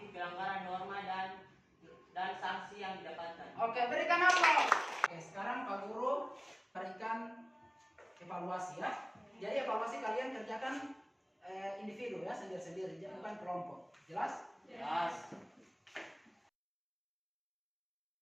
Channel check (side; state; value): both; identical; correlation 1.00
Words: pelanggaran norma dan sanksi yang didapatkan. Oke, berikan aplaus. Oke, sekarang Pak Guru berikan evaluasi, ya. Jadi evaluasi kalian kerjakan individu, ya, sendiri-sendiri, bukan kelompok. Jelas? Jelas.